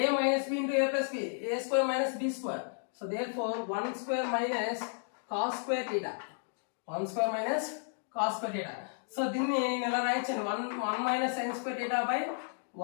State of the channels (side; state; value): right; silent; digital silence